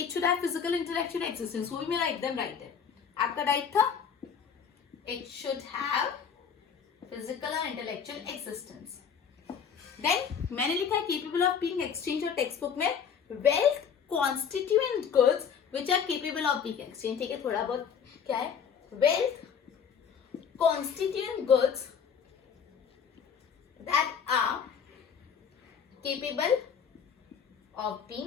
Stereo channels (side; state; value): right; quieter; 7.1 dB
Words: should have physical intellectual existence, वो भी मेरा एकदम राइट है। आपका राइट था, it should have physical and intellectual existence. Then मैंने लिखा है केपेबल ऑफ बीइंग एक्सचेंज, और टेक्स्ट बुक में wealth constituent goods which are capable of being exchange. ठीक है, थोड़ा बहुत क्या है, wealth constituent goods that are capable of